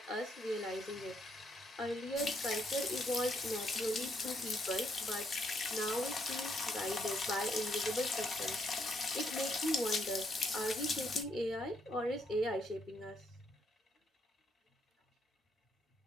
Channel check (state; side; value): normal; both; correlation 0.74